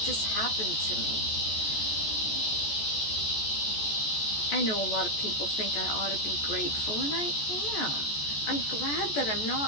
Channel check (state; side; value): late; right; 14 ms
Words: just happened to me. I know a lot of people think I ought to be grateful, and I am. I'm glad that I'm